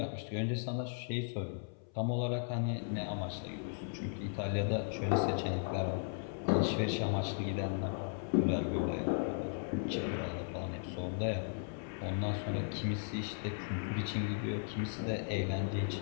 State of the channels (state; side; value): silent; right; 53 dB below the other